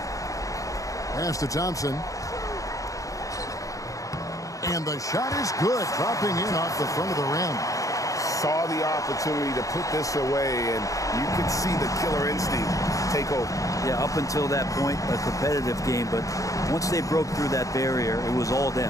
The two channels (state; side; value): late; right; 0.16 ms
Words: Pass to Thompson. And the shot is good. Dropping in off the front of the rim. Saw the opportunity to put this away, and you could see the killer instinct take over. Yeah, up until that point, a competitive game, but once they broke through that barrier, it was all